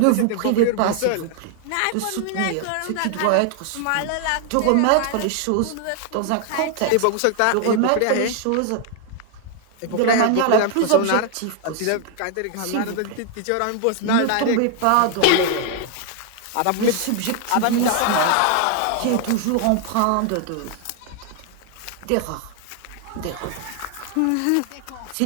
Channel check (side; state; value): both; different; correlation 0.00